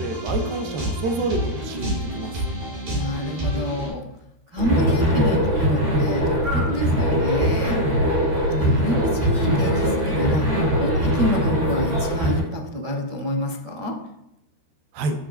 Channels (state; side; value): late; left; 13 ms